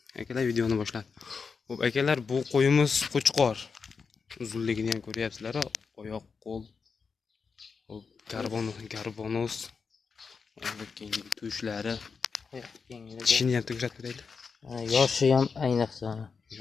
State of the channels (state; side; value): quieter; right; 5.3 dB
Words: Akalar, videoni boshladi. Xo'p, akalar, bu qo'yimiz qo'chqor. Uzunligini ham ko'ryapsizlar, oyoq, qo'l. Xo'p, garbonos. Kenglik tushlari. Tishini ham ko'rsatib beraylik. Yoshi ham ayniqsa.